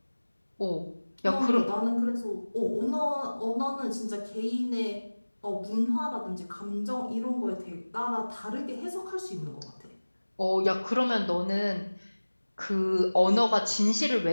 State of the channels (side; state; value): both; inverted; correlation -1.00